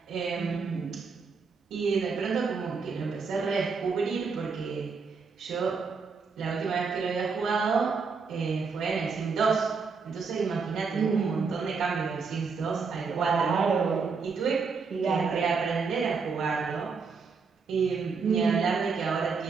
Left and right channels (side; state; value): left; quieter; 5.1 dB